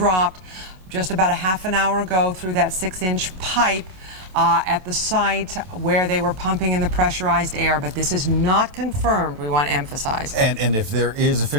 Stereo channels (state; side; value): late; left; 27 ms